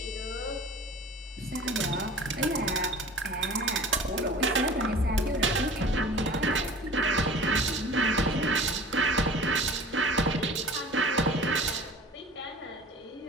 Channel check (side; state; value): both; normal; correlation 0.42